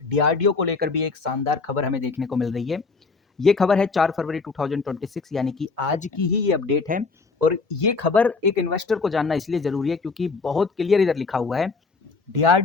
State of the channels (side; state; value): right; quieter; 4.3 dB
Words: डीआरडीओ को लेकर भी एक शानदार खबर हमें देखने को मिल रही है। ये खबर है 4 फरवरी 2026 यानी कि आज की ही ये अपडेट है। और ये खबर एक इन्वेस्टर को जानना इसलिए जरूरी है क्योंकि बहुत क्लियर इधर लिखा हुआ है,